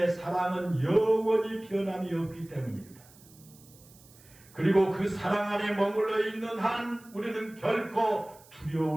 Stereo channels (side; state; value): right; noise; hiss, 25 dB below the sound